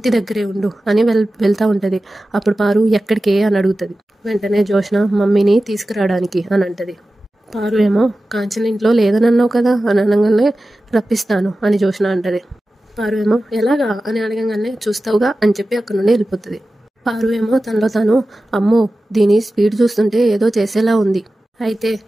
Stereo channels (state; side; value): normal; both; correlation 0.95